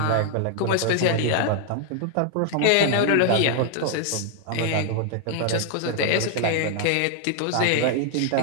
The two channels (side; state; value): both; different; correlation 0.00